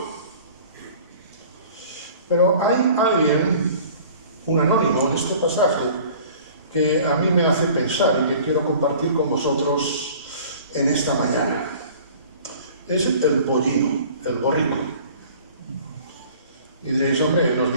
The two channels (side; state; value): both; inverted; correlation -0.47